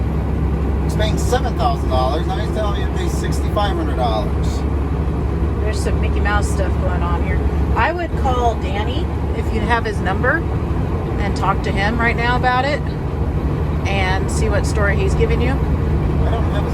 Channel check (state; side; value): identical; both; correlation 1.00